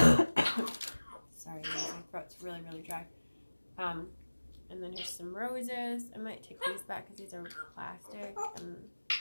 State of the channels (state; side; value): inverted; both; correlation -1.00